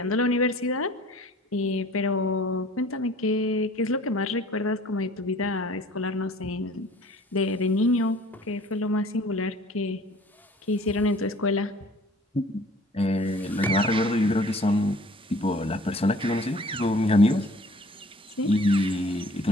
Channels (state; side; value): normal; both; correlation 0.50